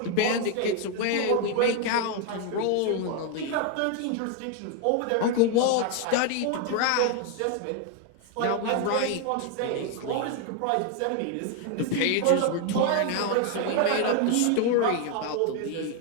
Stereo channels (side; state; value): both; different; correlation 0.01